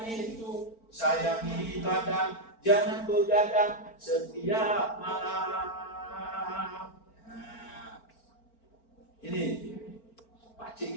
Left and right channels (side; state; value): right; late; 4.4 ms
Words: itu sayangi badan, jangan begadang setiap malam. Ini